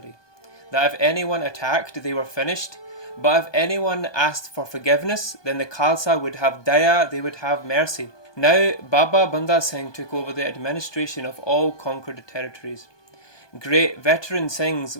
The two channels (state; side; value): late; right; 1.2 ms